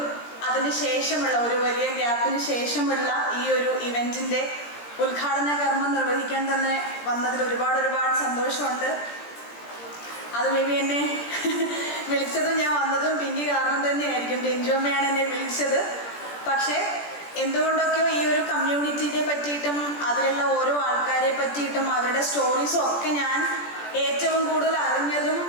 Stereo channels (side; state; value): right; late; 17 ms